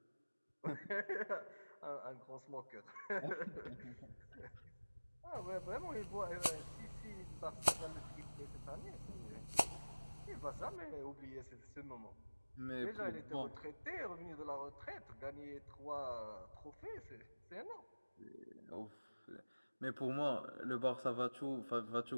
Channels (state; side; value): inverted; both; correlation -1.00